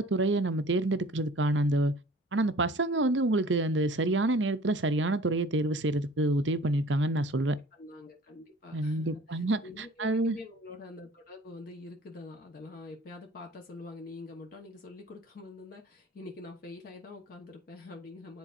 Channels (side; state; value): both; normal; correlation 0.48